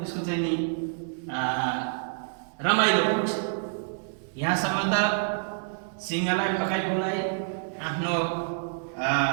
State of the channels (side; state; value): left; silent; digital silence